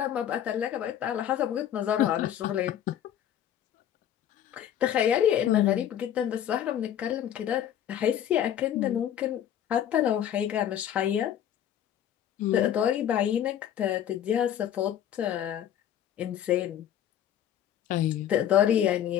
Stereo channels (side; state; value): right; quieter; 10.4 dB